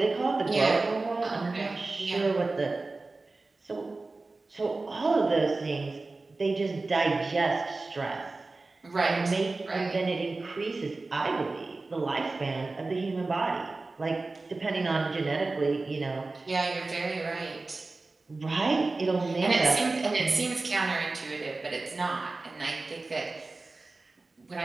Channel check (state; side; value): quieter; left; 3.4 dB